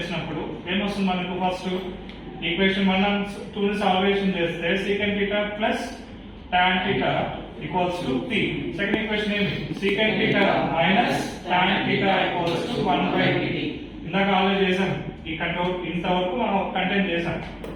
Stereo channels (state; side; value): identical; both; correlation 1.00